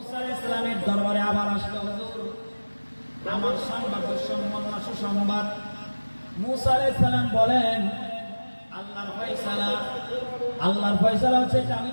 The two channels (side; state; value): both; inverted; correlation -1.00